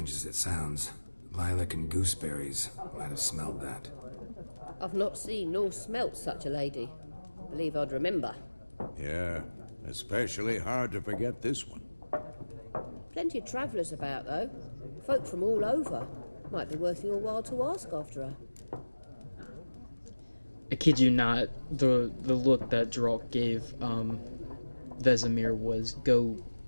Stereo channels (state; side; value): inverted; both; correlation -1.00